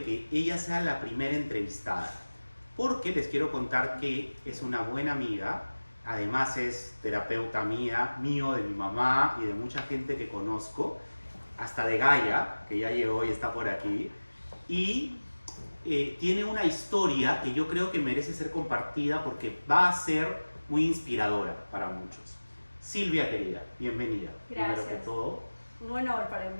que ella sea la primera entrevistada, porque les quiero contar que es una buena amiga, además es terapeuta mío, de mi mamá y de mucha gente que conozco, hasta de Gaia, que ya llegó y está por aquí, y tiene una historia que yo creo que merece ser compartida porque va a ser muy inspiradora para muchos. Silvia, querida, bienvenida. Gracias. Primero que todo. Un honor para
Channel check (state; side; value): inverted; both; correlation -1.00